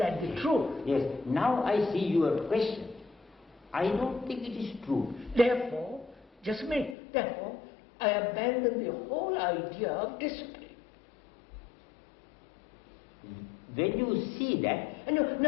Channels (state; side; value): drops out; right; at 7.0 s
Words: the truth? Yes. Now I see your question. I don't think it is true. Therefore, just a minute, therefore, I abandon the whole idea of discipline. When you see that, No.